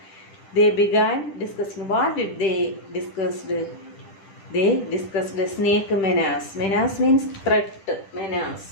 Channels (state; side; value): late; right; 10 ms